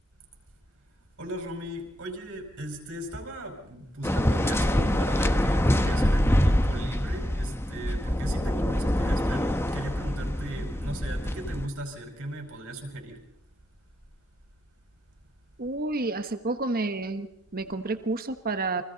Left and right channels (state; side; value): normal; both; correlation 0.82